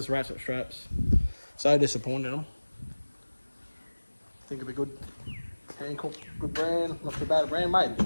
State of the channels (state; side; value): inverted; both; correlation -1.00